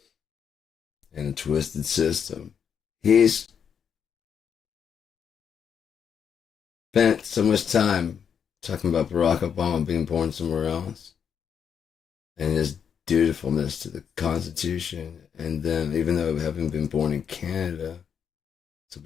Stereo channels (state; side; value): quieter; right; 7.5 dB